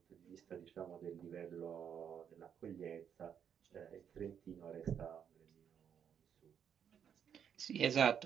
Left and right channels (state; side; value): quieter; left; 8.2 dB